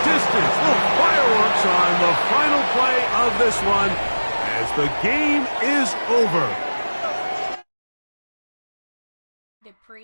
distance. Little fireworks on the final play of this one as the game is over.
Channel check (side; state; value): both; inverted; correlation -1.00